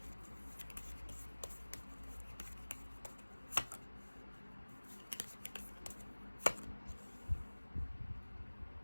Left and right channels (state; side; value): inverted; both; correlation -1.00